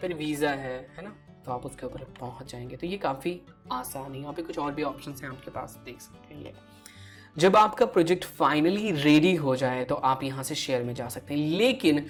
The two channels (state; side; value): identical; both; correlation 1.00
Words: वीज़ा है ना, तो आप उसके ऊपर पहुंच जाएंगे। तो ये काफ़ी आसान है। यहाँ पे कुछ और भी ऑप्शंस हैं आपके पास, देख सकते हैं। ये जब आपका प्रोजेक्ट फाइनली रेडी हो जाए तो आप यहाँ से शेयर में जा सकते हैं, लेकिन